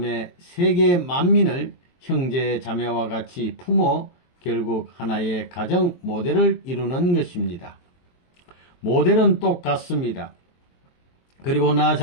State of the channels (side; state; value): right; late; 23 ms